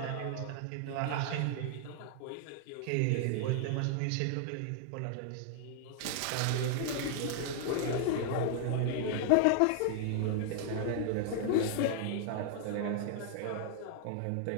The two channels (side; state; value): both; different; correlation -0.01